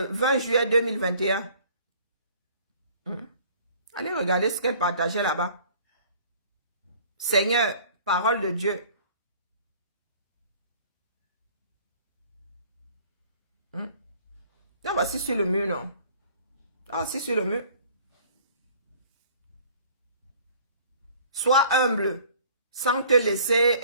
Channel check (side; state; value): both; inverted; correlation -0.53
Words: juillet 2021. Allez regarder ce qu'elle partageait là-bas. Seigneur, parole de Dieu. Non, voici sur le mur, non. Ah, c'est sur le mur. Sois humble, sans te